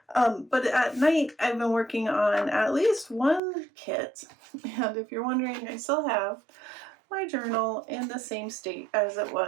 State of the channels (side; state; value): left; drops out; at 3.4 s